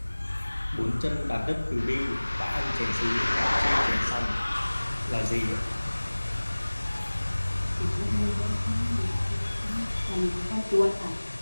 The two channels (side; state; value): both; inverted; correlation -1.00